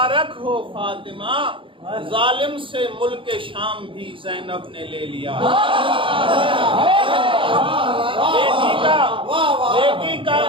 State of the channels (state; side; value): late; left; 0.25 ms